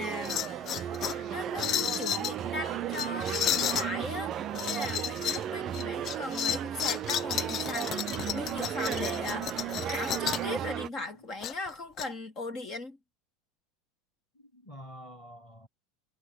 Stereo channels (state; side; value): normal; both; correlation 0.46